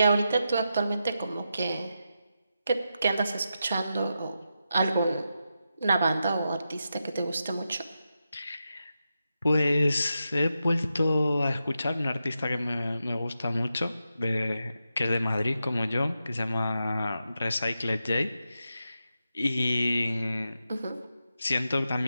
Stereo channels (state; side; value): inverted; both; correlation -0.88